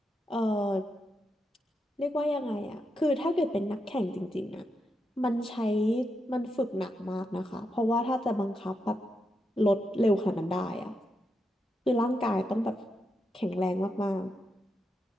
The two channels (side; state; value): both; normal; correlation 0.84